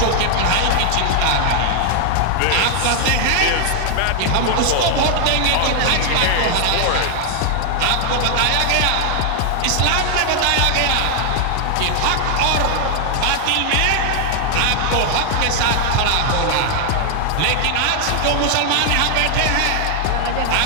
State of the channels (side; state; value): both; different; correlation 0.00